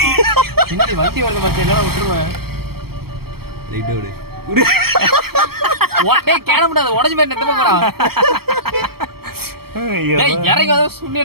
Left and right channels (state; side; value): late; left; 0.95 ms